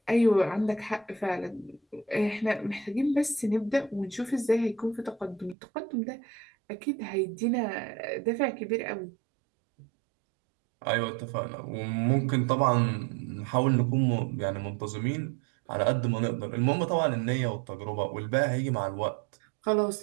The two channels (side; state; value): left; drops out; at 5.6 s